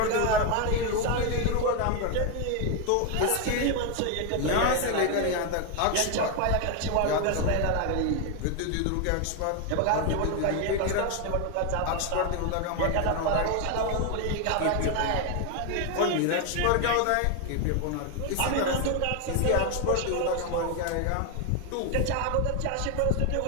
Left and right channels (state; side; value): different; both; correlation 0.01